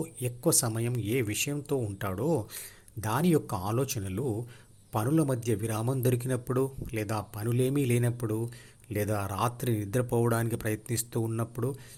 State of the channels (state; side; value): identical; both; correlation 1.00